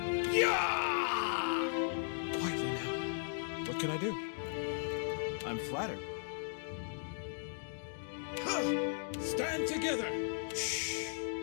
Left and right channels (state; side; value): silent; right; digital silence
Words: Yeah! Quietly now. What can I do? I'm flattered. Stand together! Shh!